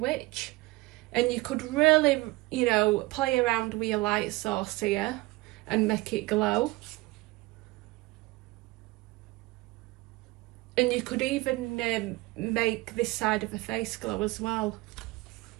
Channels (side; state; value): left; quieter; 21.2 dB